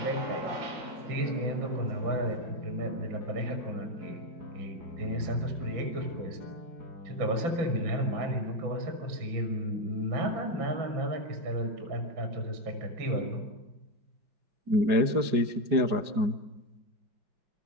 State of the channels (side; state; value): left; late; 5.0 ms